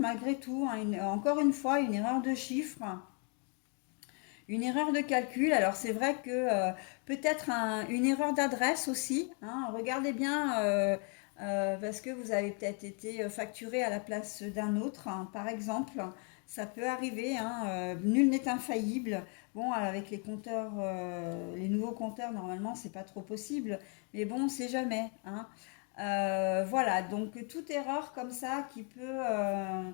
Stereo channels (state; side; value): quieter; right; 37.6 dB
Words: tout, hein, encore une fois, une erreur de chiffre. Une erreur de calcul, alors c'est vrai que peut-être une erreur d'adresse aussi, hein. Regardez bien parce que vous avez peut-être été facturé à la place d'un autre, hein, par exemple. Ça peut arriver, hein, nul n'est infaillible. Bon, avec les compteurs, les nouveaux compteurs, normalement, c'est pas trop possible, mais bon, c'est jamais, hein. Voilà, donc toute erreur comme ça qui